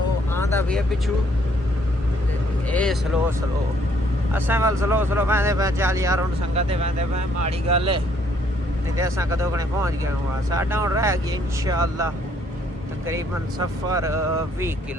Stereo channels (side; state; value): both; normal; correlation 0.66